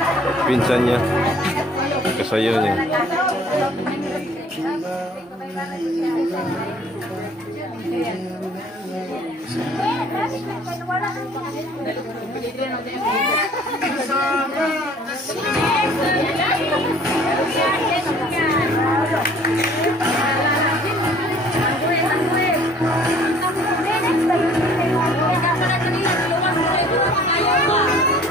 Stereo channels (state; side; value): normal; both; correlation 0.54